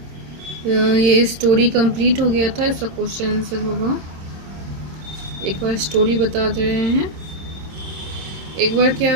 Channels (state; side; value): late; left; 26 ms